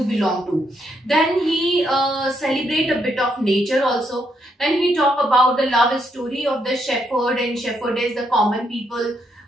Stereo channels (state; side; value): normal; both; correlation 0.77